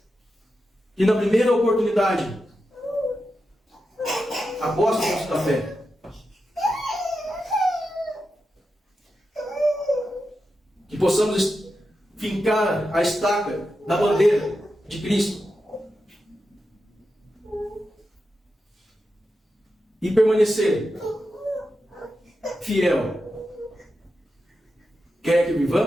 que na primeira oportunidade apostam da fé. Que possamos fincar a estaca da bandeira de Cristo e permanecer fiel, quer que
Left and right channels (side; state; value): both; normal; correlation 0.89